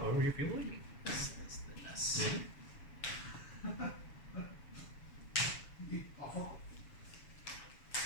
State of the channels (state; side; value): late; right; 7.1 ms